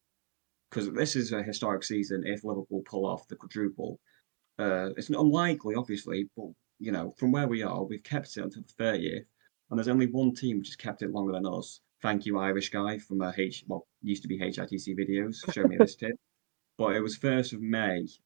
because this is a historic season. If Liverpool pull off the quadruple, it's unlikely, obviously, but from where we are, we've kept it until the 30th, and there's only one team which has kept it longer than us. Thank you, Irish guy from used to be HITC videos. Show me this tip. But it was 1st of May,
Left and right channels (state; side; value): silent; left; 55 dB below the other